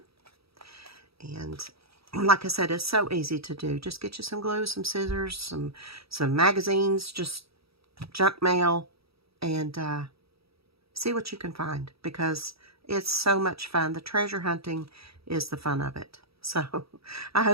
And like I said, it's so easy to do. Just get you some glue, some scissors, some magazines, just junk mail, and see what you can find, because it's so much fun. The treasure hunting is the fun of it. So I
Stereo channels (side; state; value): left; late; 0.77 ms